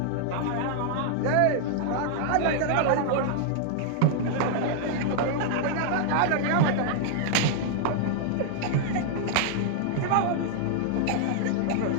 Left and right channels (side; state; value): both; different; correlation -0.01